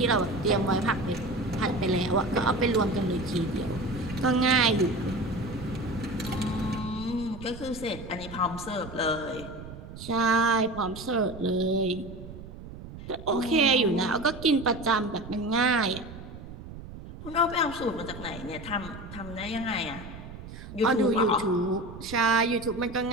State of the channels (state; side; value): noise; right; rumble, 13 dB below the sound